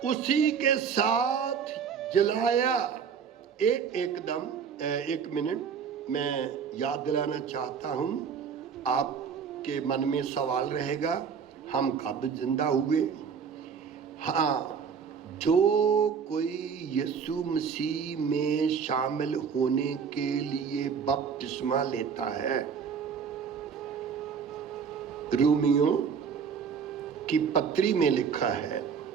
उसी के साथ जलाया। एक मिनट मैं याद दिलाना चाहता हूं, आपके मन में सवाल रहेगा हम कब जिंदा हुए? हाँ, जो कोई यीशु मसीह में शामिल होने के लिए बपतिस्मा लेता है, रोमियो की पत्री में लिखा है,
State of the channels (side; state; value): left; quieter; 6.6 dB